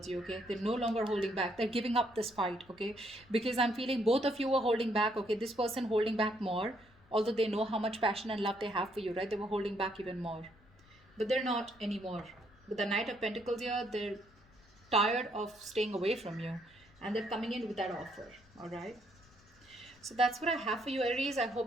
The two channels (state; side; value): noise; left; rumble, 28 dB below the sound